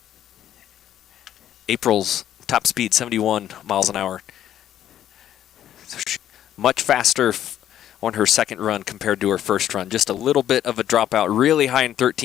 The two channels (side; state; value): right; quieter; 11.3 dB